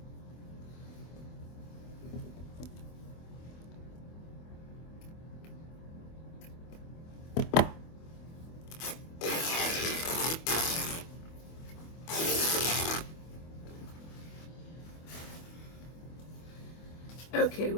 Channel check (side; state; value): right; late; 24 ms